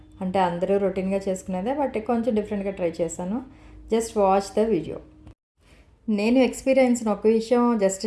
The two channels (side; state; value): both; identical; correlation 1.00